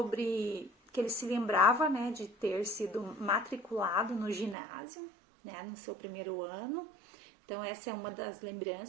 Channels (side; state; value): left; drops out; at 4.5 s